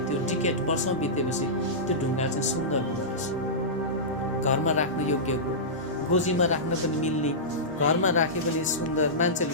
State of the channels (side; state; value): both; normal; correlation -0.16